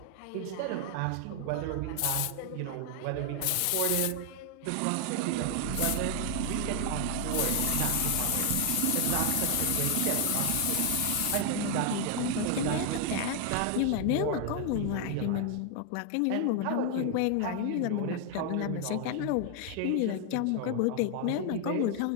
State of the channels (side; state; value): both; different; correlation 0.00